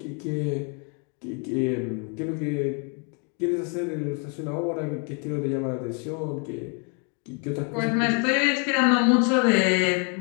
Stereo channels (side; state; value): right; quieter; 38.5 dB